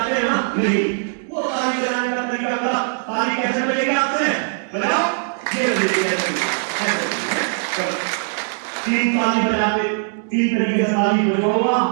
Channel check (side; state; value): left; silent; 65 dB below the other